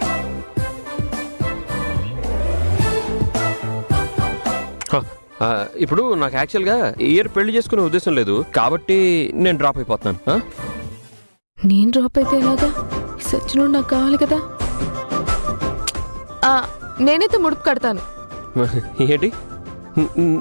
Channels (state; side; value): inverted; both; correlation -1.00